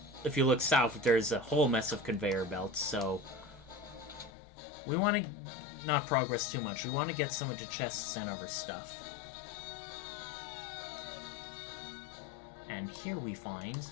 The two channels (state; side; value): drops out; right; at 4.3 s